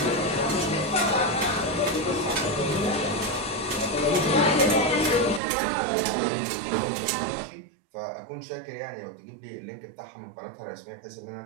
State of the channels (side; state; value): left; drops out; at 5.4 s